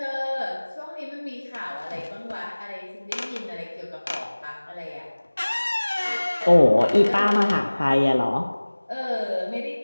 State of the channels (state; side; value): inverted; both; correlation -1.00